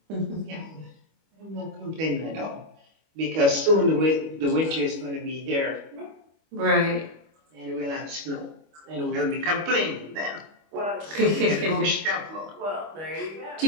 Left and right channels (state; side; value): late; left; 25 ms